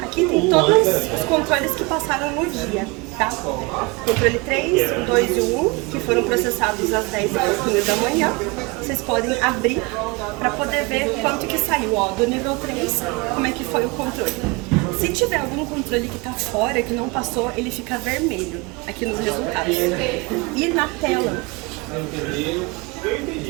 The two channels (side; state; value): left; quieter; 25.8 dB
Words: Aqui tem todos os controles que passaram no dia, tá? Controle 3, o 2 e o 1, que foram processados às 10 da manhã. Vocês podem abrir para poder ver quanto que saiu, ó, do nível 3, como é que foi o controle. Se tiver algum controle que está fora, que não passou, ele fica vermelho aqui nos resultados. E na tela